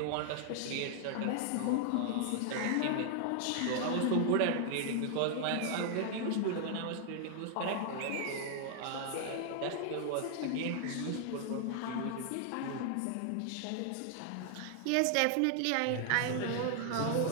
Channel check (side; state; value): both; different; correlation 0.00